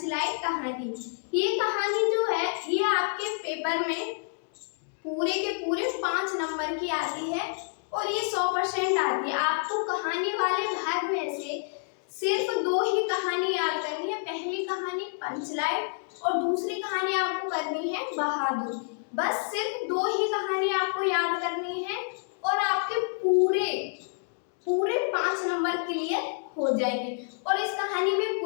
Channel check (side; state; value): right; silent; digital silence